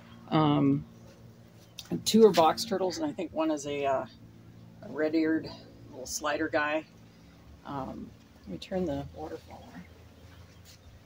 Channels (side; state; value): both; identical; correlation 1.00